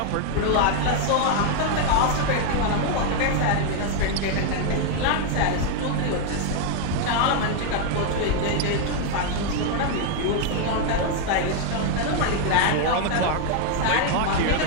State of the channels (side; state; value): both; different; correlation 0.00